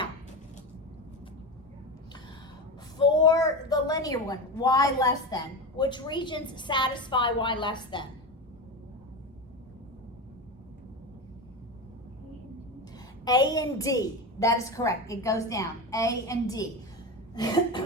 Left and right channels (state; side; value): normal; both; correlation 0.21